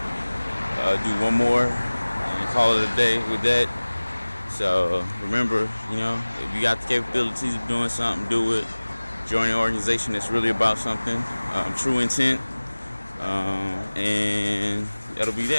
Do one more and call it a day with that. So remember, you know, if you got the capabilities of doing something, do it. Join an organization that's really about something. True intent. And that'll be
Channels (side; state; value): both; inverted; correlation -1.00